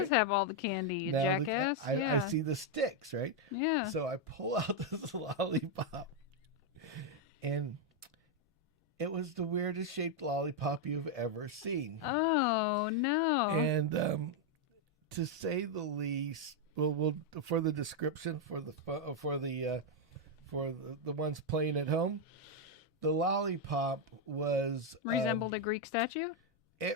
have all the candy, you jackass. I see the sticks, right? Yeah. So I pull out this lollipop, and it was the weirdest shaped lollipop you've ever seen. Oh no! And to say the least, we'll for the description for the ones playing at home, the lollipop was resembled a Greek statue. It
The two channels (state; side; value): normal; both; correlation 0.01